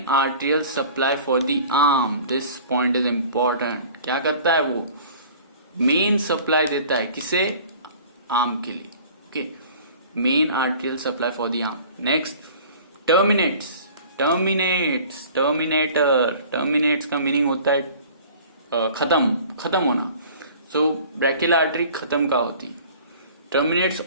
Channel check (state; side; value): inverted; both; correlation -0.46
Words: arterial supply for the arm. This point is important. क्या करता है वो? मेन सप्लाई देता है किसे? आर्म के लिए। Okay, main arterial supply for the arm. Next, terminates का मीनिंग होता है खत्म होना। सो ब्रैकियल आर्टरी खत्म का होती है। Terminates